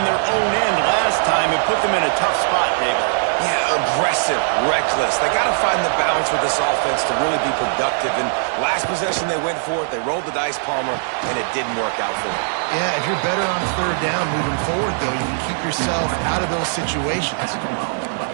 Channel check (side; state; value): left; silent; digital silence